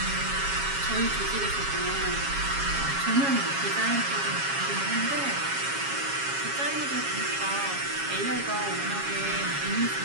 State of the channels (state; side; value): late; left; 7.3 ms